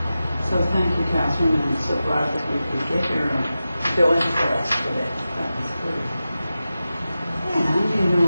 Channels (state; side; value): inverted; both; correlation -0.93